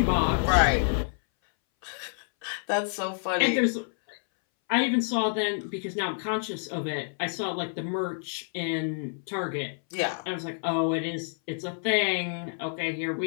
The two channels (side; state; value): right; silent; 59 dB below the other